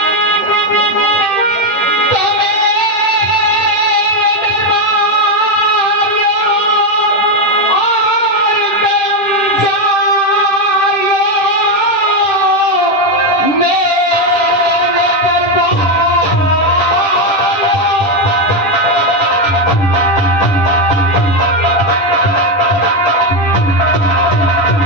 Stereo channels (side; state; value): right; late; 10 ms